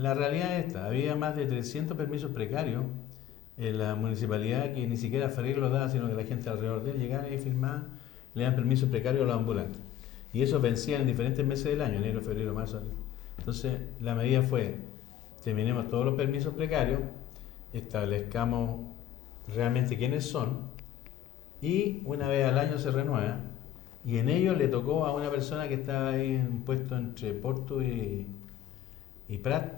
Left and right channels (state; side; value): quieter; right; 11.0 dB